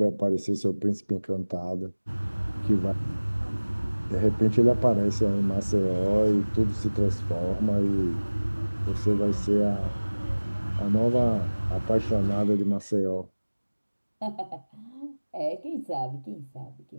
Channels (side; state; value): both; inverted; correlation -1.00